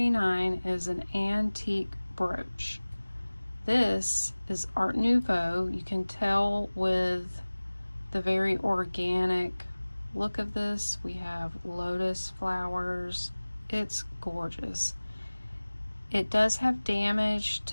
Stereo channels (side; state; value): both; inverted; correlation -1.00